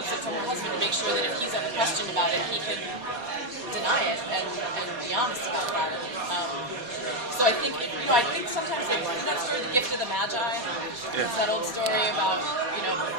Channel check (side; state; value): left; late; 4.2 ms